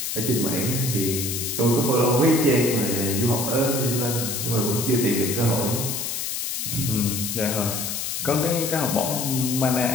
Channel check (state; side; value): noise; left; hiss, 3 dB below the sound